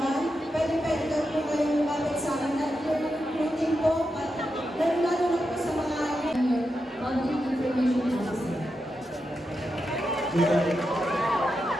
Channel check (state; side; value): normal; both; correlation 0.87